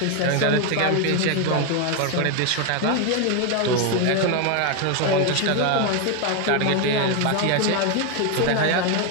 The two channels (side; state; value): both; different; correlation 0.01